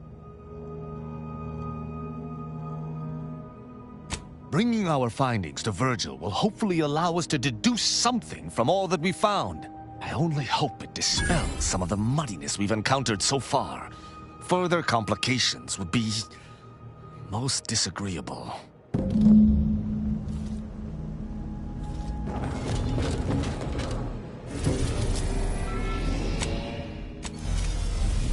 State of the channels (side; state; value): both; identical; correlation 1.00